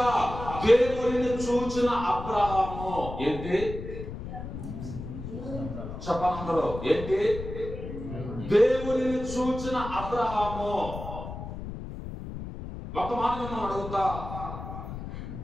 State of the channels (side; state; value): left; noise; rumble, 9 dB below the sound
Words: దేవునిని చూచిన అబ్రహాము ఏంటి? చెప్పనందరూ ఏంటి? దేవునిని చూచిన అబ్రహాము. ఒక మాట మనం అడుగుతా,